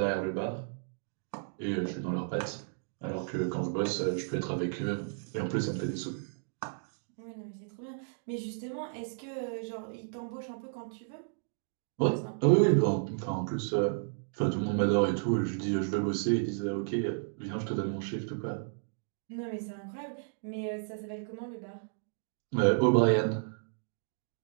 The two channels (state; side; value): silent; left; digital silence